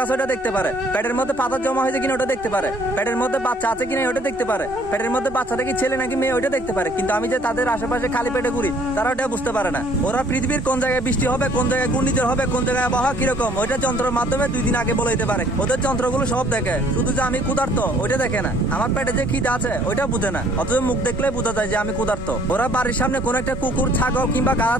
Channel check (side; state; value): both; normal; correlation 0.59